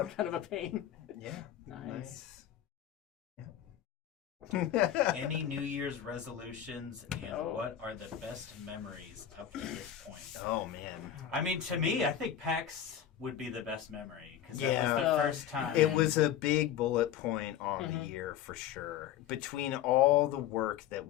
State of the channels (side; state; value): right; quieter; 10.2 dB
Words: kind of a pain. Yeah. Nice. Yeah. Any New Year's resolutions, and Oh. what are the best memories up to this point? Oh man. I mean, to me, I think PAX would be the best memory because that was Yeah. the first time. It was a big bullet point on Mm-hmm. the year for sure. Between all the work that